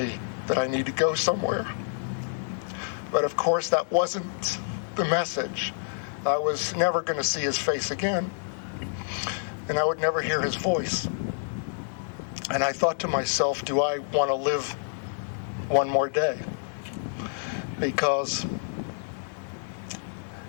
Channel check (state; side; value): silent; right; 59 dB below the other